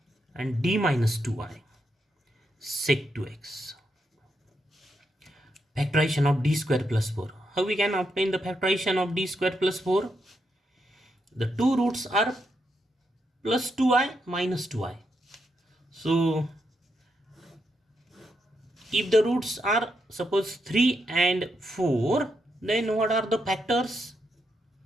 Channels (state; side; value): normal; both; correlation 0.81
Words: and D minus 2i sec 2x. Factorization of D square plus 4. How we can obtain the factorization of D square plus 4? The two roots are plus 2i minus 2i. So if the roots are suppose 3 and 4, then what are the factors?